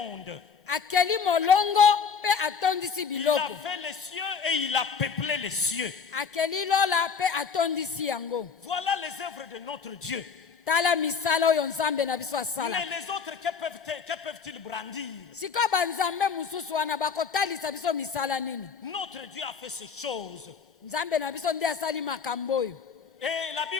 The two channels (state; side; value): quieter; right; 6.1 dB